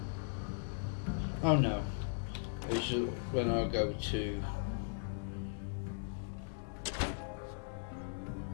Oh no. It's just when I go to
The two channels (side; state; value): right; silent; digital silence